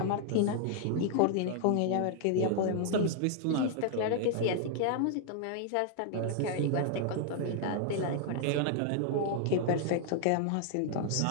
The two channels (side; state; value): both; different; correlation 0.00